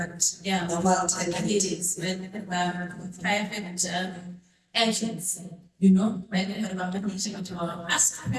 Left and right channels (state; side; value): identical; both; correlation 1.00